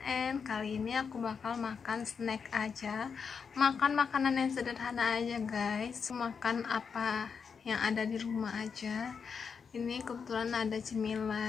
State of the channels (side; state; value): right; quieter; 6.0 dB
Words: Kali ini aku bakal makan snack aja, makan makanan yang sederhana aja guys. Makan apa yang ada di rumah aja. Ini kebetulan ada